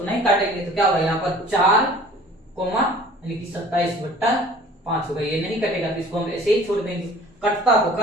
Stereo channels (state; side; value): normal; both; correlation 0.48